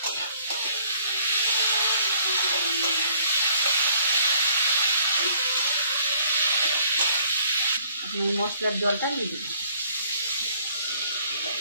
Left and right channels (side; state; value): both; inverted; correlation -0.61